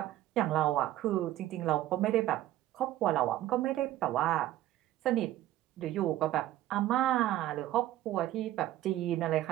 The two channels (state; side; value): quieter; left; 14.2 dB